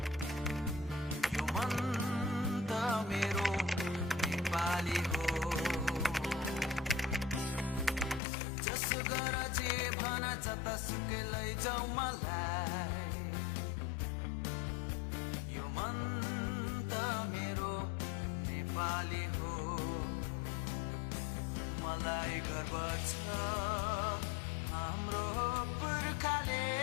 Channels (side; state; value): right; drops out; at 8.2 s